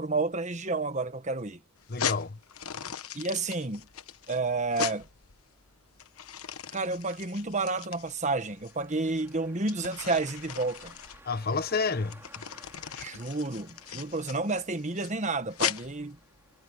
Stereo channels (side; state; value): both; normal; correlation 0.08